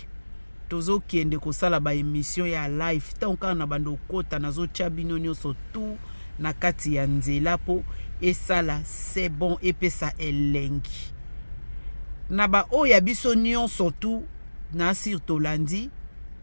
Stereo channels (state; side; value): inverted; both; correlation -1.00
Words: Tozo kiende kosala ba émission ya live tanka na bando kota nazo chabino nyoso tout na kati ya nzela po esala c'est bon epesa elengi na ba oya biso nyonso tout na sur tolandi